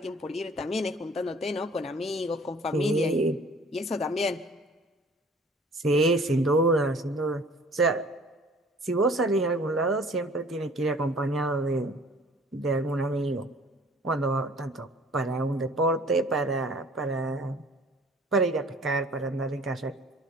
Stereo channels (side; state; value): both; normal; correlation 0.51